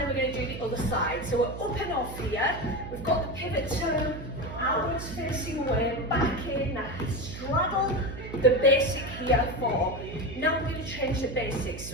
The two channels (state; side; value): noise; right; hum, 10 dB below the sound